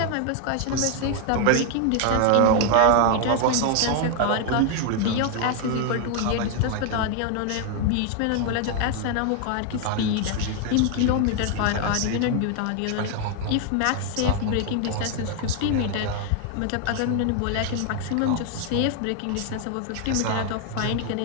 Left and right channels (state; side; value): different; both; correlation 0.00